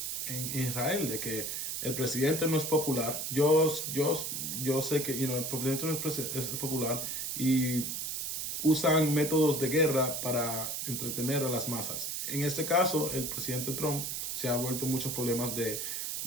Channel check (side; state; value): right; noise; hiss, 3 dB below the sound